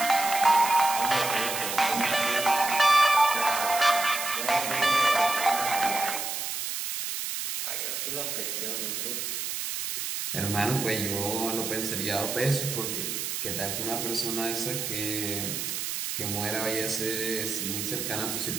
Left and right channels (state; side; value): noise; right; hiss, 3 dB below the sound